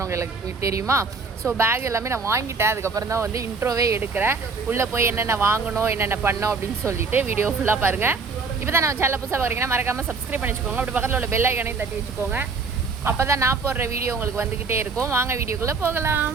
உங்களுக்கு தெரியுமா? ஸோ பேக் எல்லாமே நான் வாங்கிட்டேன். அதுக்கப்புறம் தான் வந்து இன்ட்ரோவே எடுக்கிறேன். உள்ளே போய் என்னென்ன வாங்கணும், என்னென்ன பண்ணோம் அப்படின்னு சொல்லிட்டு வீடியோ ஃபுல்லாக பாருங்கள். இப்போ தான் நம்ம சேனல் புதுசாக பார்க்குறீங்கன்னா மறக்காமல் சப்ஸ்கிரைப் பண்ணி வச்சுக்கோங்க. அப்படி பக்கத்தில் உள்ள பெல் ஐக்கானையும் தட்டி வச்சுக்கோங்க. அப்போ தான் நான் போடுற வீடியோ உங்களுக்கு வந்துக்கிட்டே இருக்கும். வாங்க வீடியோக்குள்ளே போகலாம்.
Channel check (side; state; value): left; quieter; 4.5 dB